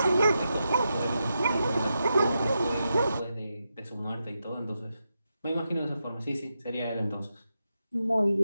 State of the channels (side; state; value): both; inverted; correlation -0.87